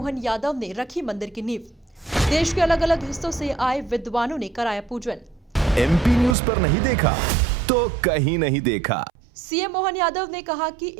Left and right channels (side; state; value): left; drops out; at 6.4 s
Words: यादव ने रखी मंदिर की नींव। देश के अलग अलग हिस्सों से आए विद्वानों ने कराया पूजन। एमपी न्यूज पर नहीं देखा तो कहीं नहीं देखा। सीएम मोहन यादव ने कहा कि